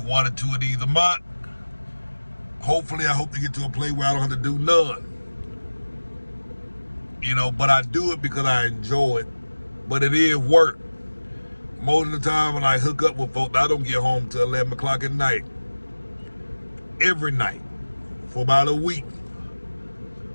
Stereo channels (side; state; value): both; inverted; correlation -1.00